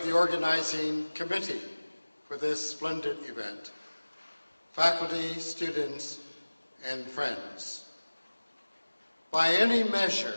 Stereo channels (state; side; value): inverted; both; correlation -1.00